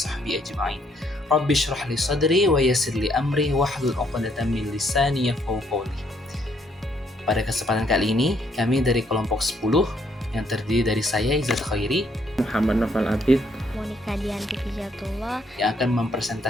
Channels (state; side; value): normal; both; correlation 0.70